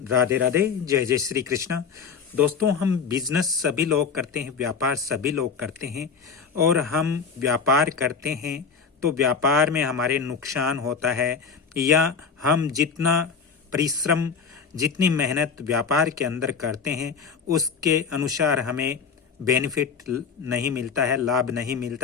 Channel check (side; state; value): right; quieter; 5.8 dB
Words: राधे राधे, जय जय श्री कृष्णा। दोस्तों, हम बिजनेस सभी लोग करते हैं, व्यापार सभी लोग करते हैं और हम व्यापार करते हैं तो व्यापार में हमारे नुकसान होता है या हम जितना परिश्रम, जितनी मेहनत व्यापार के अंदर करते हैं उसके अनुसार हमें बेनिफिट नहीं मिलता है, लाभ नहीं